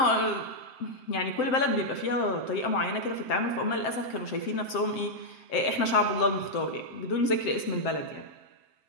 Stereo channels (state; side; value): late; right; 7.7 ms